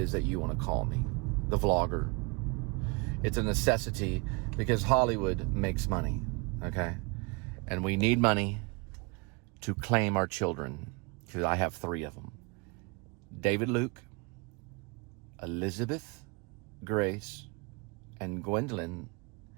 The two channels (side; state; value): left; quieter; 29.4 dB